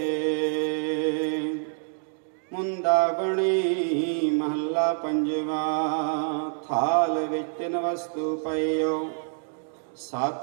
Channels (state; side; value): silent; left; 60 dB below the other